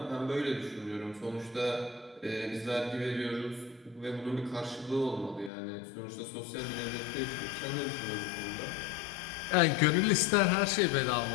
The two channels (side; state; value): right; drops out; at 5.5 s